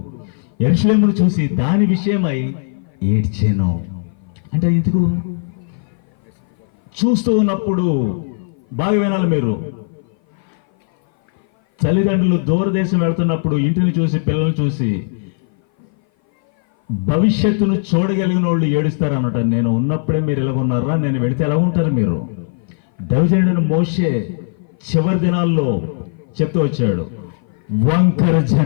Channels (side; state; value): right; silent; 58 dB below the other